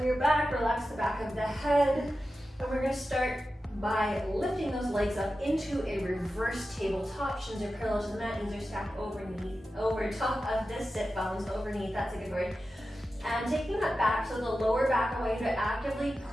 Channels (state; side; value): normal; both; correlation 0.92